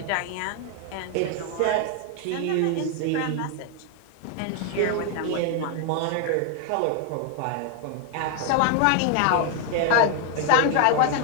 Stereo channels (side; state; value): both; different; correlation 0.00